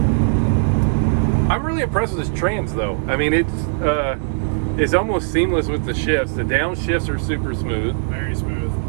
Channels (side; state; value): left; silent; 66 dB below the other